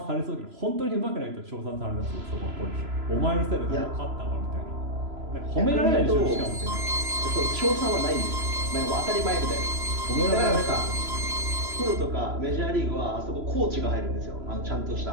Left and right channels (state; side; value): late; left; 3.0 ms